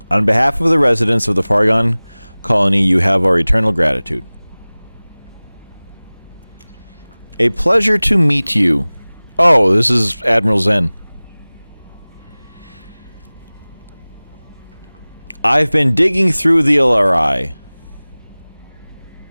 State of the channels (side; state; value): both; inverted; correlation -1.00